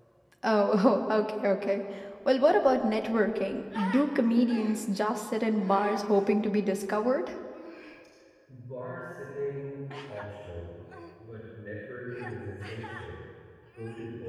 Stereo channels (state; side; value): identical; both; correlation 1.00